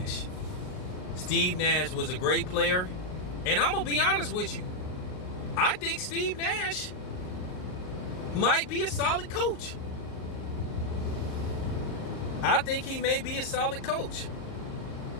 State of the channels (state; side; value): late; right; 38 ms